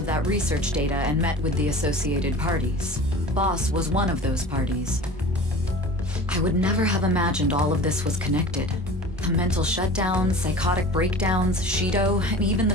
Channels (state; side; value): normal; both; correlation 0.39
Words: that research data and met with the associated parties. Boss was one of those parties. I would never have imagined all of this was connected. The mental shutdowns, psychotic breakdowns, Shido, and even the